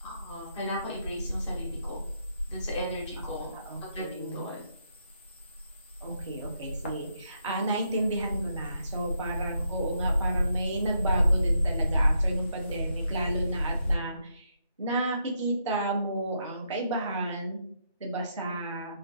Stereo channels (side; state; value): both; inverted; correlation -0.78